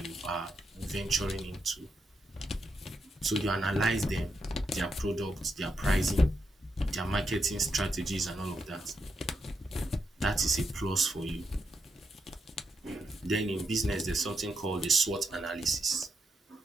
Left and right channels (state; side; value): normal; both; correlation 0.83